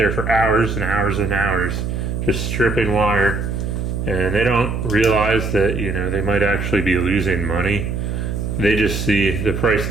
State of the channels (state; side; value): noise; right; hum, 3 dB below the sound